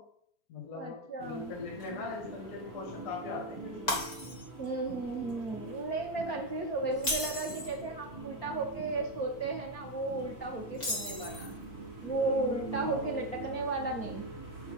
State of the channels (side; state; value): right; late; 4.4 ms